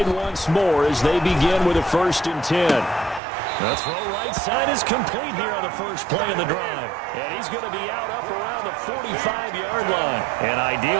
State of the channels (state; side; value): drops out; left; at 3.2 s